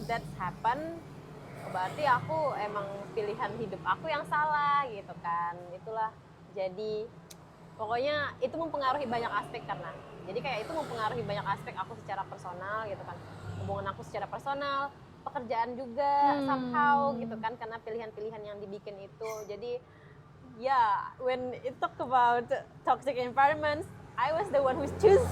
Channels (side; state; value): both; identical; correlation 1.00